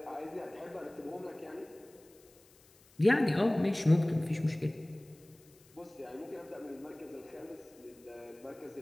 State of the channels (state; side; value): noise; left; hiss, 27 dB below the sound